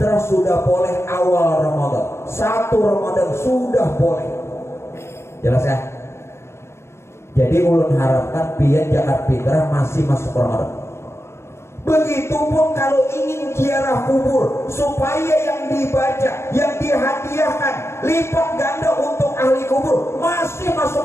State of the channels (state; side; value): late; right; 0.13 ms